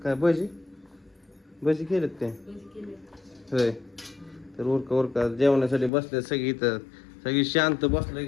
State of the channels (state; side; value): drops out; right; at 5.9 s